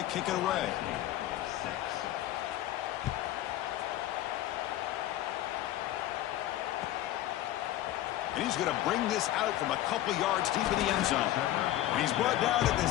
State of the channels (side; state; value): right; quieter; 13.9 dB